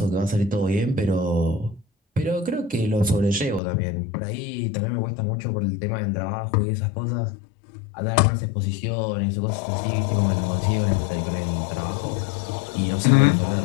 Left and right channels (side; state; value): right; drops out; at 3.6 s